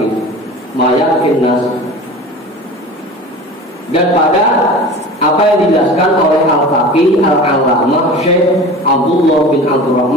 mayakin nas. Dan pada apa yang dijelaskan oleh Al-Faqih Al-Allamah Syekh Abdullah bin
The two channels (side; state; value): both; normal; correlation 0.37